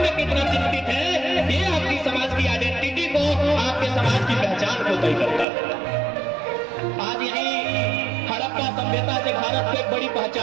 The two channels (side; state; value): left; drops out; at 5.5 s